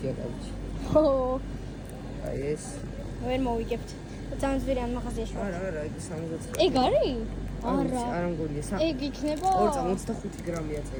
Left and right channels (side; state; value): both; identical; correlation 1.00